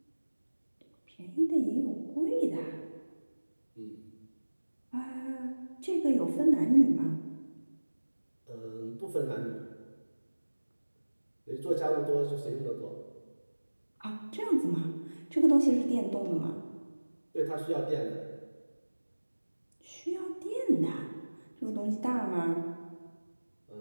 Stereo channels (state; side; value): inverted; both; correlation -1.00